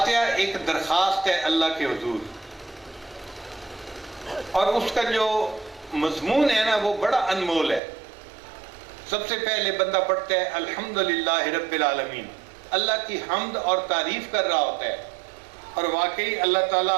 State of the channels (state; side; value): drops out; left; at 7.8 s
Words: ایک درخواست ہے اللہ کے حضور، اور اس کا جو مضمون ہے نا وہ بڑا انمول ہے۔ سب سے پہلے بندہ پڑھتا ہے الحمدللہ رب العالمین، اللہ کی حمد اور تعریف کر رہا ہوتا ہے، اور واقعی اللہ